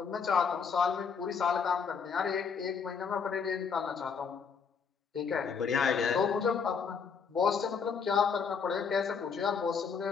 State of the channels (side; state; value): right; quieter; 6.1 dB